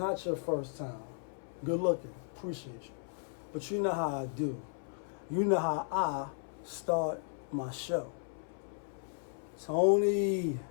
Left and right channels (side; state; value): right; silent; 54 dB below the other